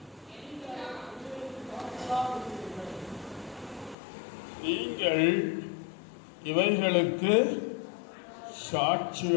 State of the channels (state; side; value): drops out; right; at 4.0 s